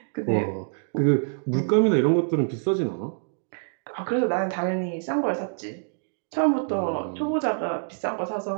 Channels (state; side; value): silent; left; digital silence